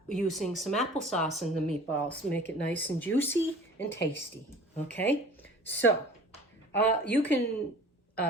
using some applesauce in the meatballs to make it nice and juicy and tasty. Okay, so you can,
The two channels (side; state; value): both; normal; correlation 0.44